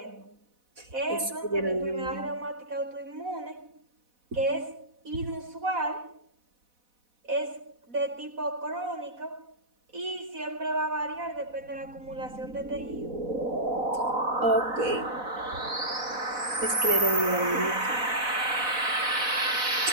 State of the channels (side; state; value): left; late; 4.1 ms